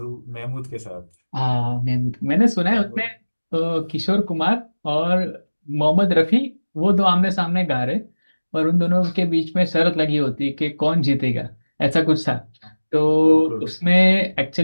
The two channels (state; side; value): inverted; both; correlation -1.00